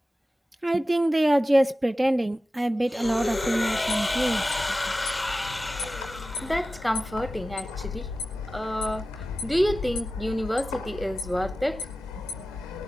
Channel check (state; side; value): normal; both; correlation 0.95